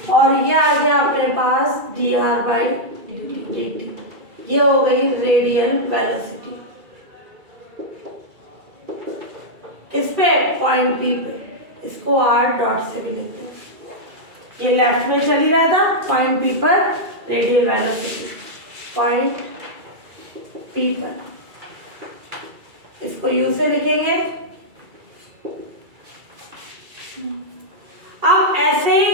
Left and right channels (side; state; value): left; late; 2.3 ms